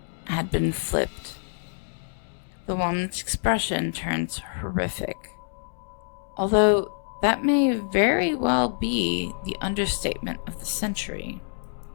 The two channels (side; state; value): right; silent; digital silence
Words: had been flipped, the woman's expression turns horrific. Although that may very well be the understatement of the century.